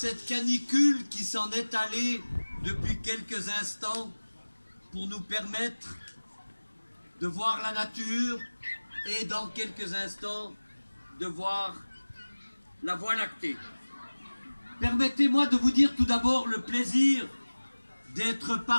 canicule qui s'en est allée depuis quelques instants pour nous permettre de voir la nature et dans quelques instants de voir la Voie lactée. Permettez-moi de vous dire tout d'abord le plaisir d'être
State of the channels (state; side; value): inverted; both; correlation -1.00